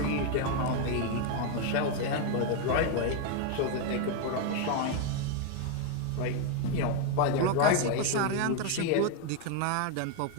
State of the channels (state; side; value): different; both; correlation 0.01